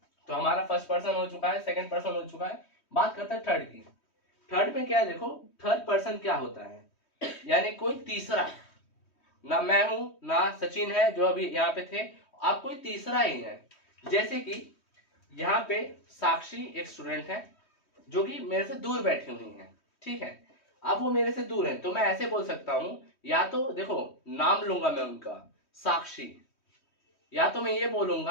तो हमारा फर्स्ट पर्सन हो चुका है, सेकंड पर्सन हो चुका है। बात करते हैं थर्ड की। थर्ड में क्या है, देखो थर्ड पर्सन क्या होता है, यानी कोई तीसरा, ना मैं हूं ना सचिन है जो अभी यहाँ पे थे, आप कोई तीसरा ही है। जैसे कि यहाँ पे साक्षी एक स्टूडेंट है जो कि मेरे से दूर बैठी हुई है, ठीक है। अब वो मेरे से दूर है तो मैं ऐसे बोल सकता हूं, या तो देखो नाम लूंगा मैं उनका साक्षी, या तो मैं ये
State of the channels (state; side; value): late; right; 3.1 ms